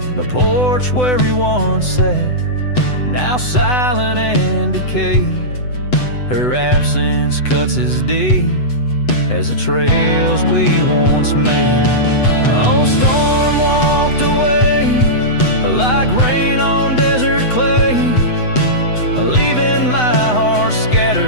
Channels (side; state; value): right; late; 8.0 ms